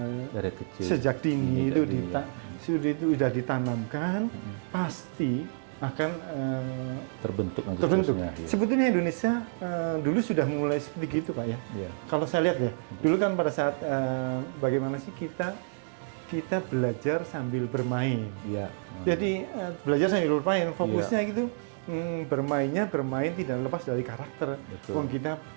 Dari kecil. sejak dini itu Iya. sudah ditanamkan, pasti akan terbentuk nanti terbentuk. seterusnya, iya. Sebetulnya Indonesia dulu sudah mulai seperti itu Pak ya. Iya. Kalau saya lihat ya, dulu kan pada saat bagaimana sih kita belajar sambil bermain. Iya. Jadi belajar sambil bermain, fokusnya gitu bermain tidak lepas dari karakter. Betul. Wong kita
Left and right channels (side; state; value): left; silent; digital silence